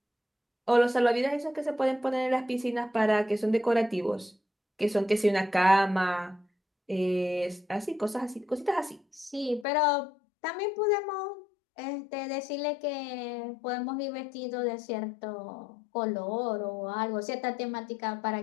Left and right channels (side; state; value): right; drops out; at 9.7 s